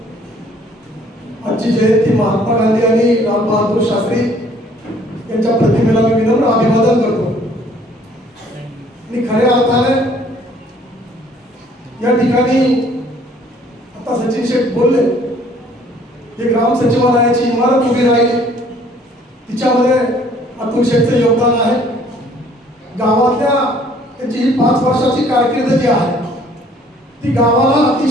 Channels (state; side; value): normal; both; correlation 0.58